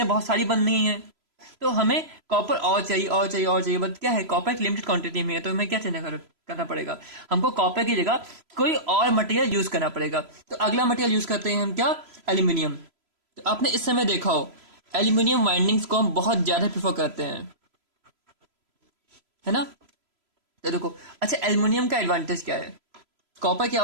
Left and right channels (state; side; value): late; left; 3.0 ms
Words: बहुत सारी बन रही हैं, तो हमें कॉपर और चाहिए और चाहिए और चाहिए, बट क्या है कॉपर एक लिमिटेड क्वांटिटी में है, तो हमें क्या करना पड़ेगा, हमको कॉपर की जगह कोई और मटेरियल यूज करना पड़ेगा। तो अगला मटेरियल यूज करते हैं हम क्या, एल्यूमिनियम। तो आपने इस समय देखा हो एल्यूमिनियम वाइंडिंग्स को हम बहुत ज्यादा प्रेफर करते हैं, है ना। तो देखो अच्छा एल्यूमिनियम का एडवांटेज क्या है, कॉपर क्या